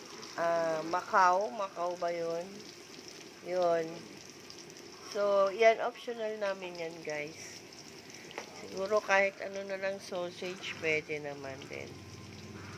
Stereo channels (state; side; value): identical; both; correlation 1.00